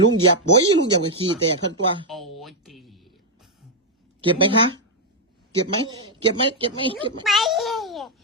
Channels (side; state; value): both; normal; correlation -0.01